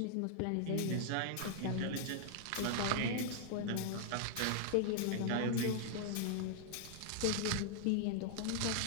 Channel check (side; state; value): both; different; correlation -0.01